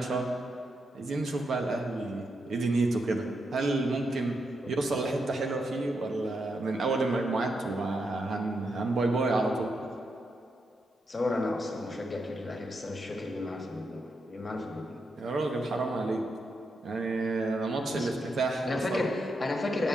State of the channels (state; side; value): normal; both; correlation 0.83